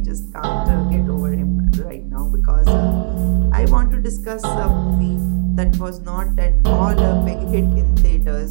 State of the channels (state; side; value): silent; left; digital silence